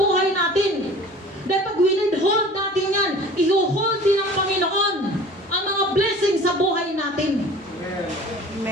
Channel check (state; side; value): normal; both; correlation 0.44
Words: natin. Dahil pag withhold natin yan, i-hold din ng Panginoon ang mga blessing sa buhay natin.